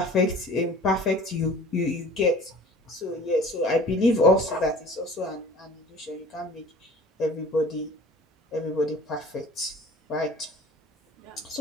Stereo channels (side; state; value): both; normal; correlation 0.45